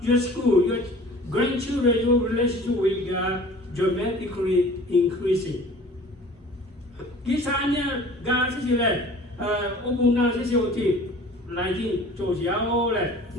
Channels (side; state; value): both; normal; correlation 0.46